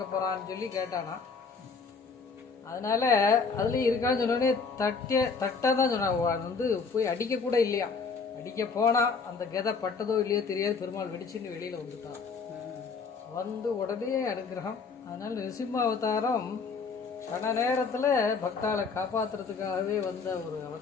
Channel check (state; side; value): quieter; right; 5.0 dB